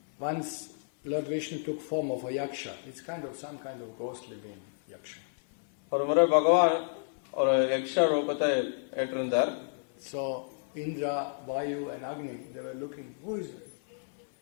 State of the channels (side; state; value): right; silent; 57 dB below the other